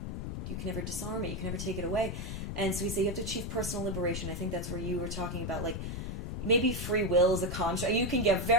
disarm it. You can never take it away. And so we say you have to achieve personal liberation. I think that's where you were talking about, like, maybe free will is a construct. You can get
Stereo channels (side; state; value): left; noise; rumble, 5 dB below the sound